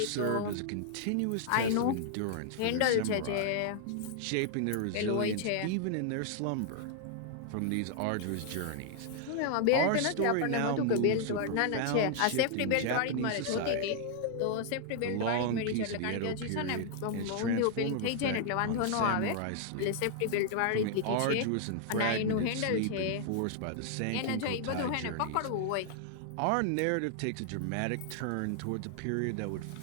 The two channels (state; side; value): different; both; correlation -0.01